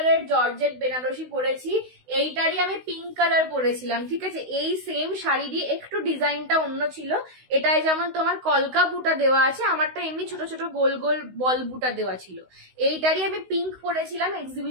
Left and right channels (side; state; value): left; late; 16 ms